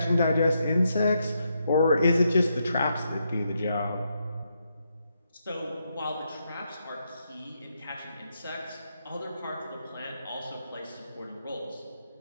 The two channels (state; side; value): inverted; both; correlation -0.80